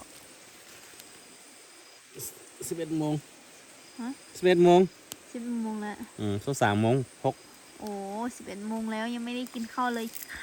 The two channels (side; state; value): both; identical; correlation 1.00